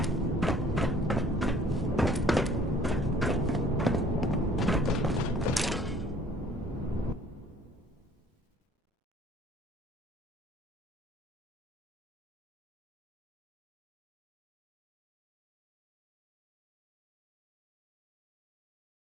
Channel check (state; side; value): normal; both; correlation 0.56